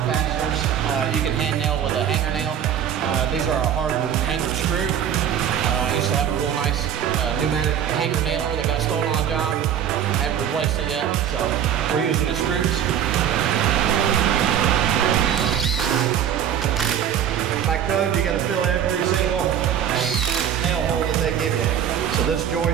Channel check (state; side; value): quieter; left; 9.3 dB